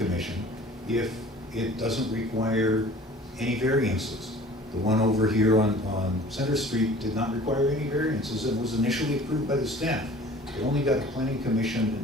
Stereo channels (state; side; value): normal; both; correlation 0.47